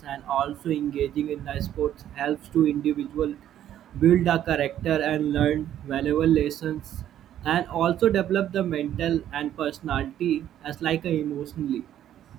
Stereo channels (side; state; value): left; quieter; 11.2 dB